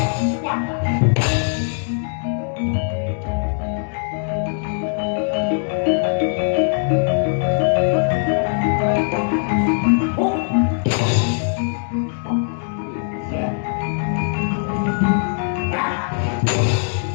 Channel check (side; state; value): right; silent; 64 dB below the other